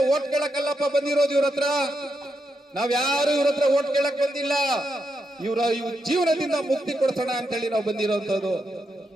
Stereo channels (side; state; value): both; normal; correlation 0.83